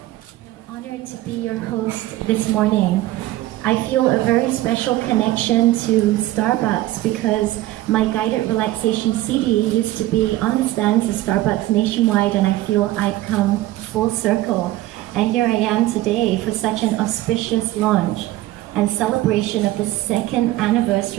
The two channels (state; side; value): quieter; left; 16.1 dB